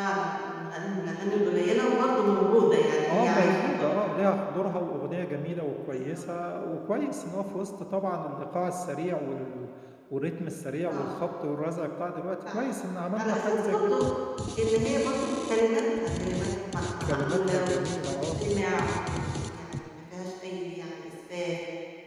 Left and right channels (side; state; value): both; identical; correlation 1.00